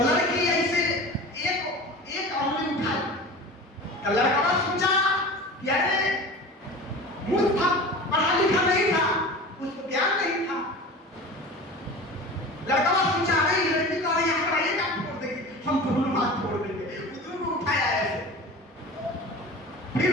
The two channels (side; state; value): both; normal; correlation 0.35